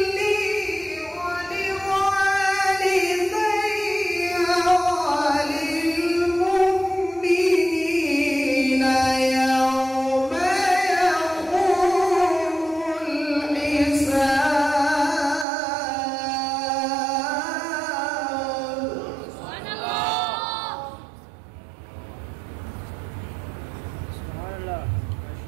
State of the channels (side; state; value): left; drops out; at 15.5 s